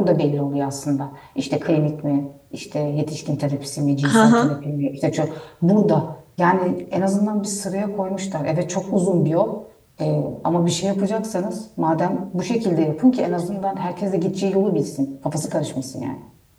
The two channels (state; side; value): identical; both; correlation 1.00